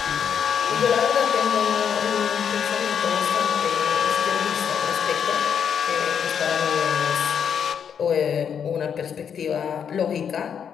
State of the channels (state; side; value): quieter; right; 7.7 dB